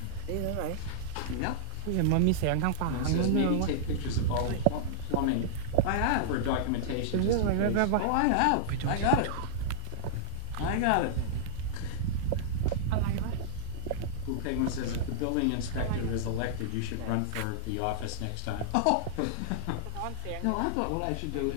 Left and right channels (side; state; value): both; different; correlation -0.01